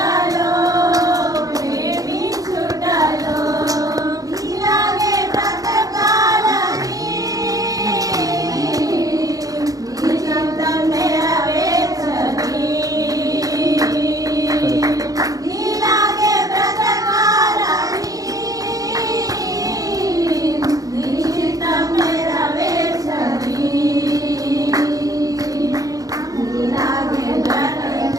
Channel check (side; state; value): left; late; 0.17 ms